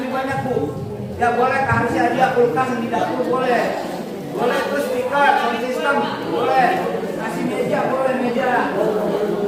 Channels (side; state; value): both; identical; correlation 1.00